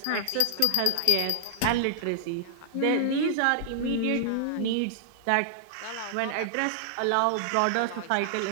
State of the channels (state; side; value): different; both; correlation -0.01